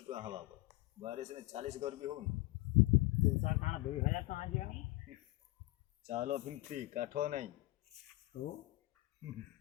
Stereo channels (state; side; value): quieter; right; 19.8 dB